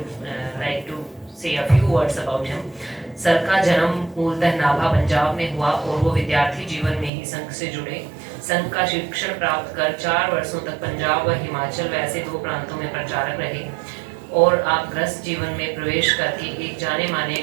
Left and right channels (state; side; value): drops out; left; at 7.1 s